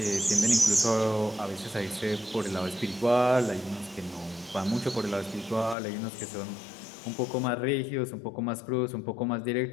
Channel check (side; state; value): right; drops out; at 5.8 s